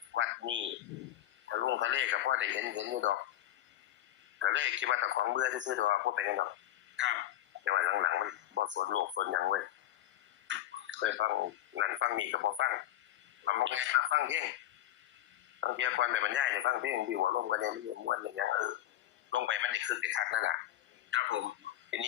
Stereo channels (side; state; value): right; quieter; 13.5 dB